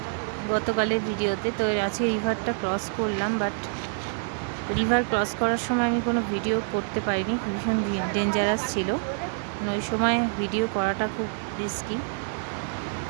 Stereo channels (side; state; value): left; silent; digital silence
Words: গতকালের ভিডিওতে। তো আজকে রিভারটা ক্রস করলাম, বাট রিভার ক্রস করার সময় আমি কোনো ভিডিও করতে পারিনি, ভীষণ ডেঞ্জারাস ছিল, ওই সময় ভিডিও করাটা খুব রিস্কি।